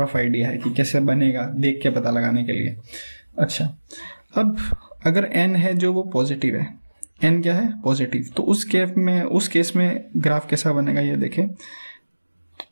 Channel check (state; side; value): inverted; both; correlation -1.00